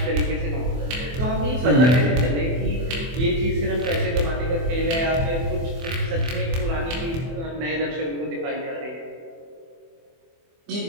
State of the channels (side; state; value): left; late; 24 ms